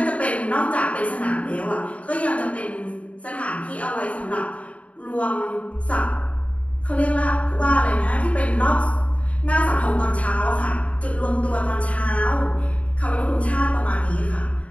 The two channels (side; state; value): right; late; 0.066 ms